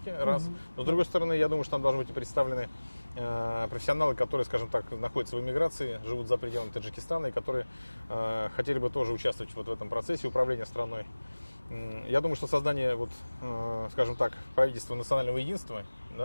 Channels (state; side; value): inverted; both; correlation -1.00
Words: раз. Но с другой стороны, я думаю, что там должны быть и представлены профессионалы, которые, скажем так, находятся в эмиграции, живут за пределами Таджикистана и которые хотели бы тоже участвовать вот в этом процессе управления страной. Я думаю, что создание, скажем так, правительства национального единства,